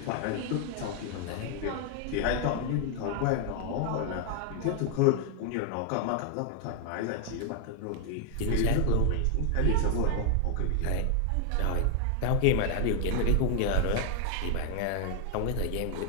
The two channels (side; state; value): both; different; correlation 0.00